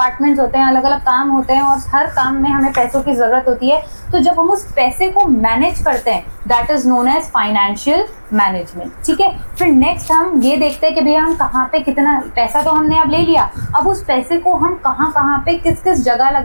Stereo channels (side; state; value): both; inverted; correlation -1.00